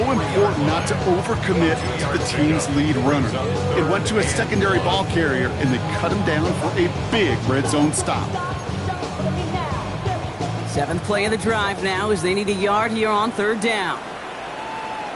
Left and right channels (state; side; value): identical; both; correlation 1.00